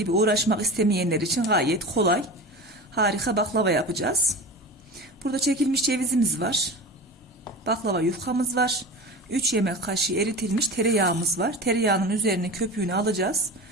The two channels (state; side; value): normal; both; correlation 0.30